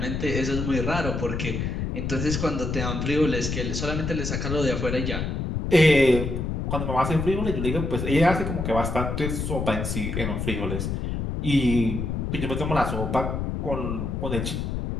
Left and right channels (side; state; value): left; noise; rumble, 2 dB below the sound